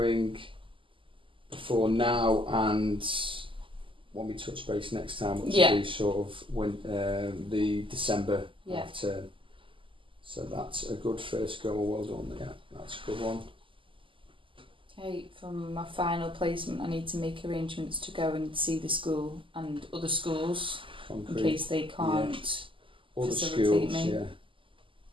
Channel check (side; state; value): left; late; 0.25 ms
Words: before now and when we touch base next time, which will be sort of when the December half term. So that's a good first goal. Well done. Yeah, that's a good one. Okay, from my final placement, I need to make arrangements to go and see the school and other schools in case they can't facilitate me.